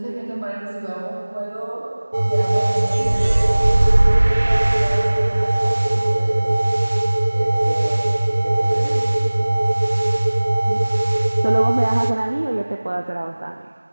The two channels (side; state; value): both; inverted; correlation -1.00